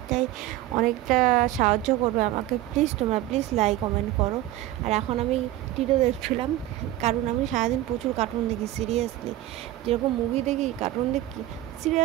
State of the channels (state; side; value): quieter; left; 15.1 dB